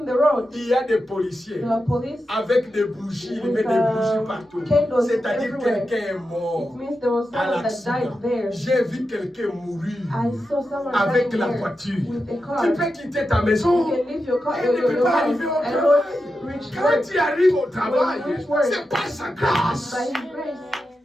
the road, il y a des policiers there were police. avec des bougies, ils mettent des bougies partout. Candles C'est-à-dire everywhere. quelqu'un est It mort means there was à someone that l'accident. died there. J'ai vu quelqu'un mourir I saw someone avec dying la there voiture. with a car. Tu peux quitter ta maison. You can leave your car, Et tu ne peux your pas house, arriver au and travail. not reach Quand work tu arrives au travail, When you reach work, c'est par sa grâce. by His grace.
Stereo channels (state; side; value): normal; both; correlation 0.89